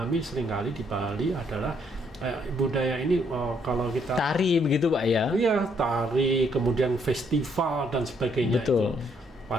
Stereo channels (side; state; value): both; normal; correlation 0.70